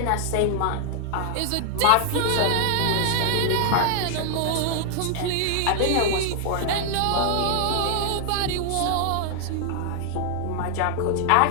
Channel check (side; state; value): both; different; correlation 0.00